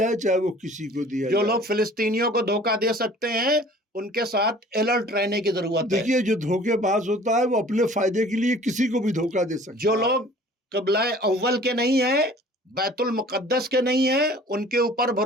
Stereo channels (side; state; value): both; normal; correlation 0.49